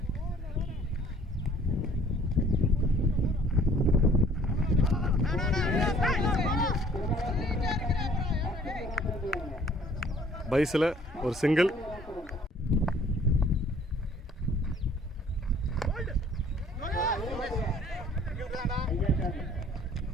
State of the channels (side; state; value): both; normal; correlation 0.56